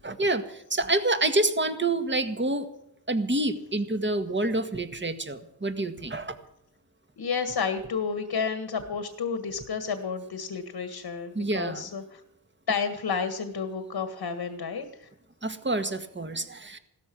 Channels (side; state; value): both; normal; correlation 0.08